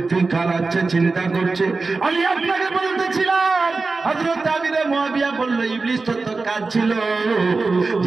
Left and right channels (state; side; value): quieter; left; 3.9 dB